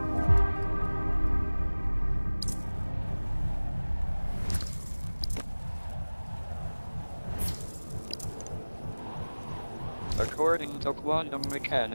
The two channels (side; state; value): both; inverted; correlation -1.00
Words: According to quantum